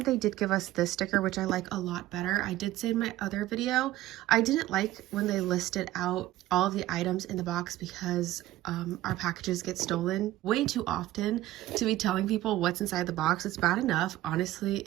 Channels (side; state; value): left; quieter; 15.3 dB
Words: did give us this sticker, which I like a lot better. I did say in my other video I didn't like when they listed out all of the items in the box because our packages get stolen way too often to be telling people what's inside the box. It's bad enough, honestly,